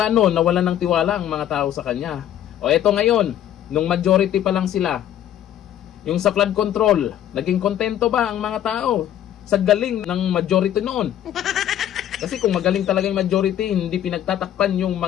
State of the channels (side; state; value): right; quieter; 11.1 dB